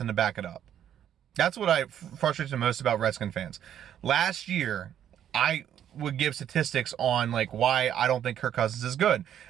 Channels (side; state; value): left; quieter; 10.1 dB